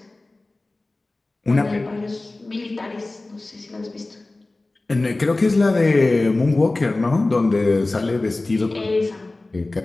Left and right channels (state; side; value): quieter; right; 3.0 dB